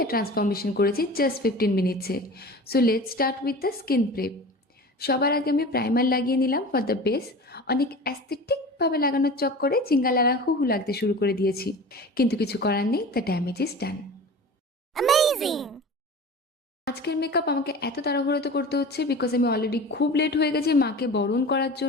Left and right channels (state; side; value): normal; both; correlation 0.36